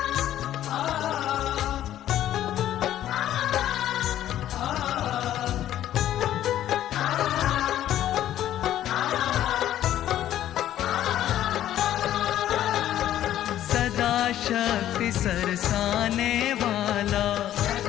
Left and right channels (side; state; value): right; quieter; 12.2 dB